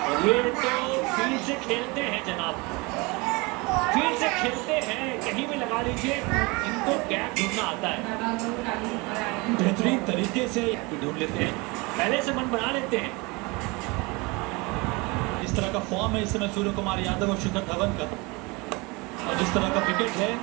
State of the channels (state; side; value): quieter; left; 26.1 dB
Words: और ये तो फील्ड से खेलते हैं जनाब, फील्ड से खेलते हैं, कहीं भी लगा लीजिए, इनको गैप ढूंढना आता है, बेहतरीन तरीके से ढूंढ लेते हैं, पहले से मन बना लेते हैं। इस तरह का फॉर्म है इस समय सूर्य कुमार यादव और शिखर धवन का, और जिस तरह का विकेट है